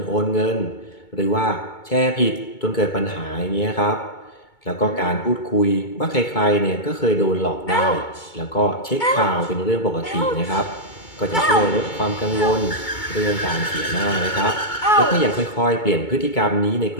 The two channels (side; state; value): right; late; 2.2 ms